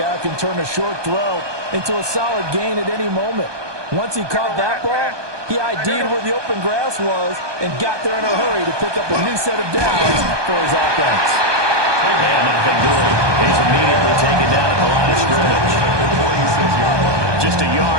who can turn a short throw into a solid gain at any moment. Once he caught that ball, he ID'd where the open grass was and got there in a hurry to pick up a new set of downs for his offense. And nothing doing. He's immediately taken down at the line of scrimmage. Just a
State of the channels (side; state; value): left; late; 1.2 ms